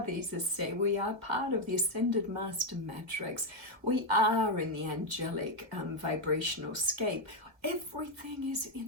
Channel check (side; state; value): left; late; 1.9 ms